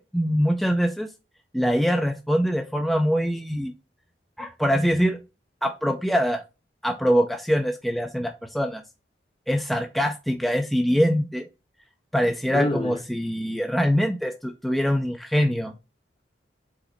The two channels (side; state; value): both; normal; correlation 0.94